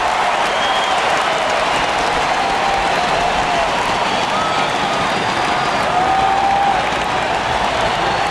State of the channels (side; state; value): both; identical; correlation 1.00